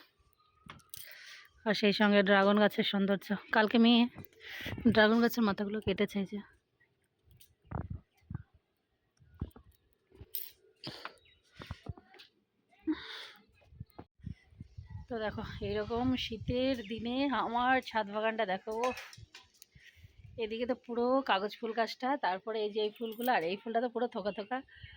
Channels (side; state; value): both; identical; correlation 1.00